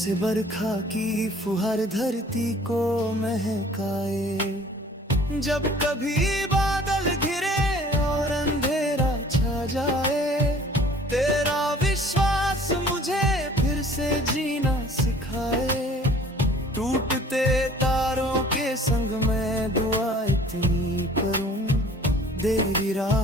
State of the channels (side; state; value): both; normal; correlation 0.51